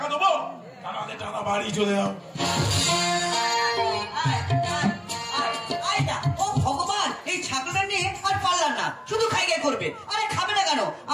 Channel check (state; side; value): identical; both; correlation 1.00